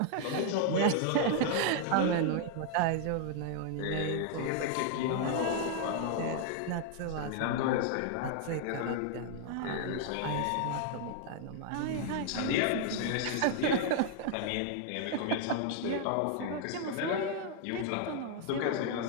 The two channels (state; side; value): different; both; correlation 0.00